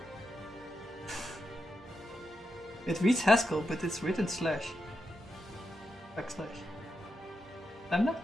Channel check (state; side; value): normal; both; correlation 0.86